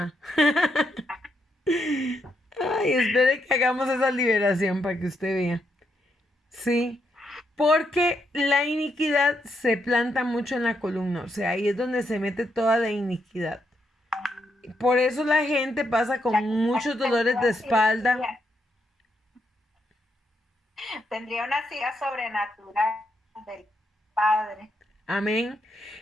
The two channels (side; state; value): both; normal; correlation 0.79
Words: Ay, espere que hagamos esa liberación para que usted vea. Sí, porque la iniquidad se planta mucho en la columna, o sea, ahí es donde se mete toda la iniquidad. Por eso la gente pasa con muchos dolores de espalda. Tendría una silla sobrenatural del Padre. Amén.